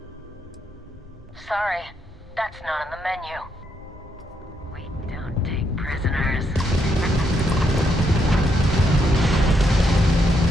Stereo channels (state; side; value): normal; both; correlation 0.77